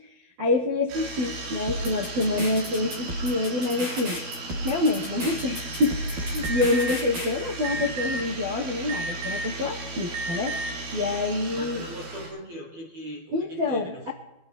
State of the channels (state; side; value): late; left; 12 ms